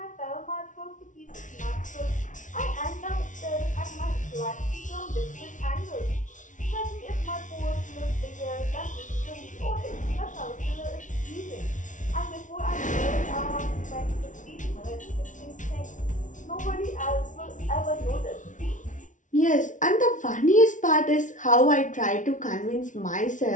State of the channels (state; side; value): late; right; 0.37 ms